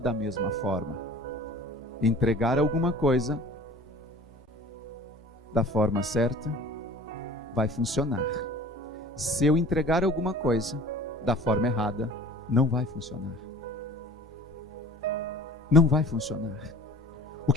mesma forma. Entregar alguma coisa da forma certa vai funcionar. Se eu entregar alguma coisa da forma errada, não vai funcionar. Não vai funcionar. O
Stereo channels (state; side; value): normal; both; correlation 0.44